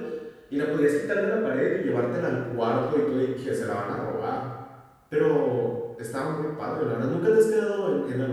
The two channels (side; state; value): both; identical; correlation 1.00